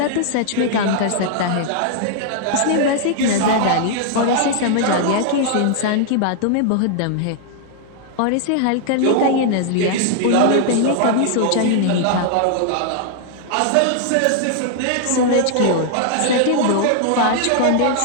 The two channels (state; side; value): different; both; correlation -0.01